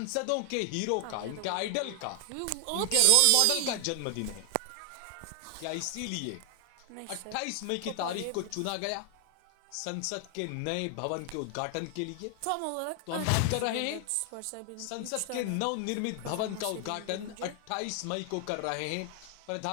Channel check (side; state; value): both; different; correlation 0.00